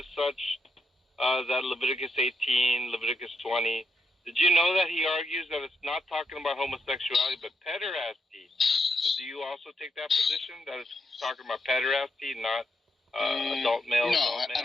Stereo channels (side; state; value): both; normal; correlation 0.80